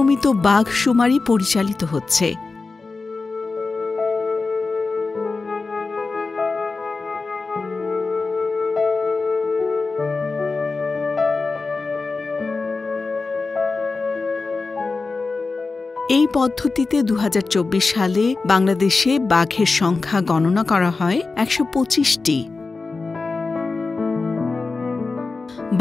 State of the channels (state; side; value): quieter; right; 4.0 dB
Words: বাঘ শুমারি পরিচালিত হচ্ছে। এই পদ্ধতিতে ২০২৪ সালে বাংলাদেশে বাঘের সংখ্যা গণনা করা হয় ১২৫টি।